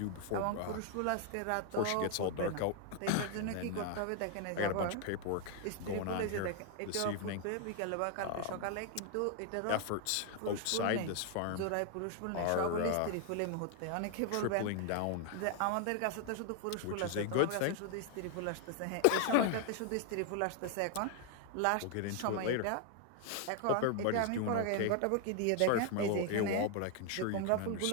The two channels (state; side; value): different; both; correlation 0.00